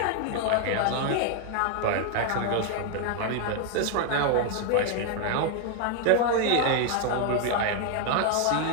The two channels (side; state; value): both; different; correlation 0.00